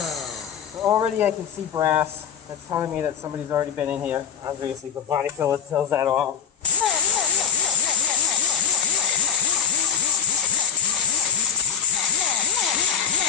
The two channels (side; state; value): right; quieter; 7.4 dB